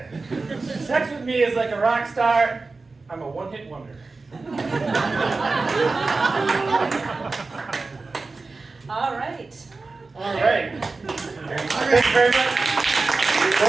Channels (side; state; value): left; quieter; 3.8 dB